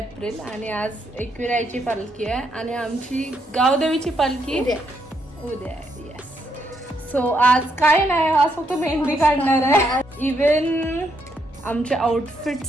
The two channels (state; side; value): normal; both; correlation 0.76